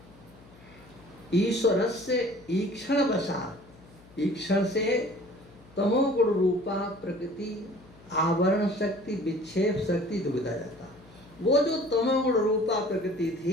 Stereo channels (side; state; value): left; noise; hum, 24 dB below the sound